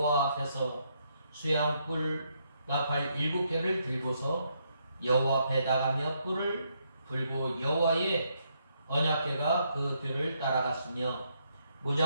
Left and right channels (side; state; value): both; inverted; correlation -0.76